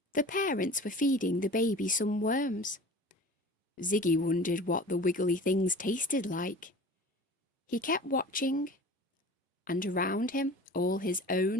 The parents were feeding the baby some worms. Siggy wondered what the wiggly things tasted like. He kept watching, and around him all his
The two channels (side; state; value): both; normal; correlation 0.39